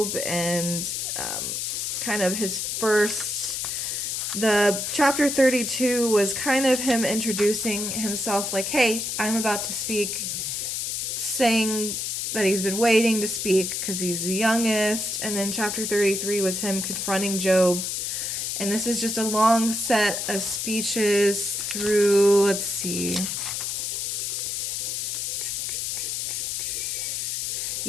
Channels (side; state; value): left; noise; hiss, 2 dB below the sound